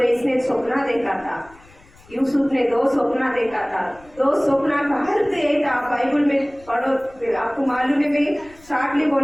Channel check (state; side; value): noise; left; rumble, 26 dB below the sound